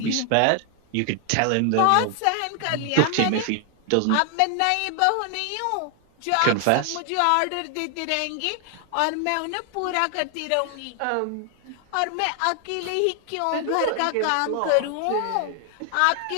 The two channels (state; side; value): different; both; correlation 0.00